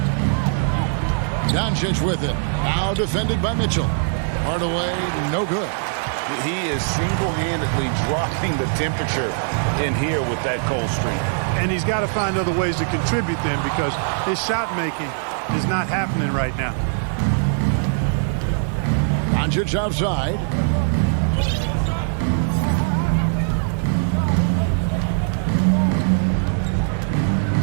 Doncic with it. Now defended by Mitchell. Hardaway, no good. He is single-handedly dropping the temperature in here with that cold streak. And he's got to find other ways to contribute then, because his shot making is not happening right now. Doncic outside.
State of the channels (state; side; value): silent; left; digital silence